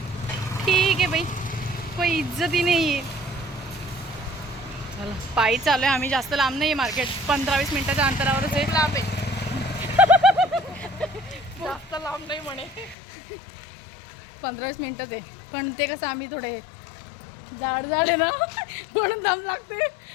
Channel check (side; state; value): right; drops out; at 13.0 s